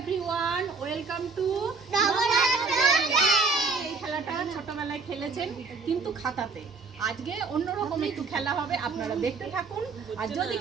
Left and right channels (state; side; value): quieter; left; 4.4 dB